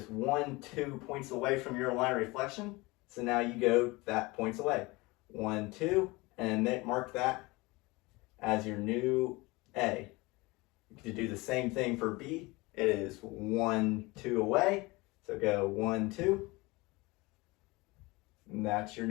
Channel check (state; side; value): quieter; right; 23.4 dB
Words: 1, 2 points away from your line of reflection. So now you go that points away. 1, 2, and then mark that as your new A. You can do the same thing for B. It is 1, 2 away. So go 1, 2. And that's your